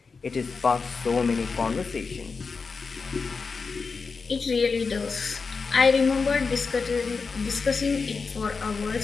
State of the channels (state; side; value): quieter; right; 4.8 dB